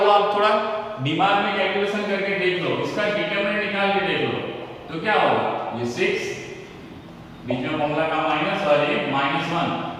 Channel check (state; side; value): identical; both; correlation 1.00